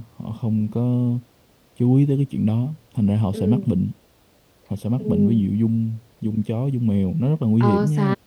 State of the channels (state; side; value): identical; both; correlation 1.00